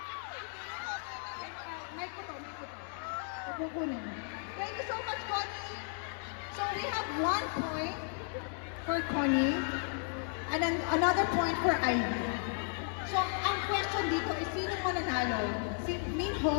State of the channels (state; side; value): silent; right; 55 dB below the other